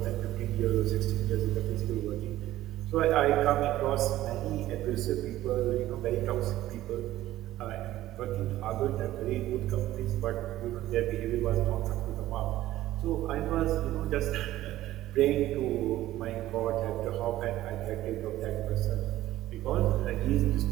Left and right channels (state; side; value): quieter; left; 14.8 dB